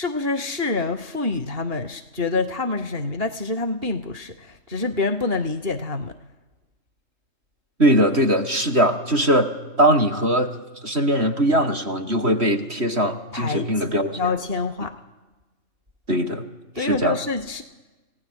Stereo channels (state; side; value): late; left; 3.1 ms